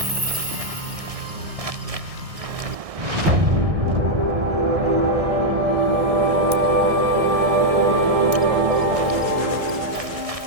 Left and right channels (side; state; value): left; late; 1.6 ms